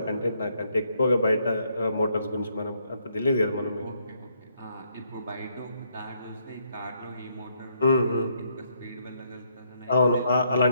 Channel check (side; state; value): both; inverted; correlation -0.73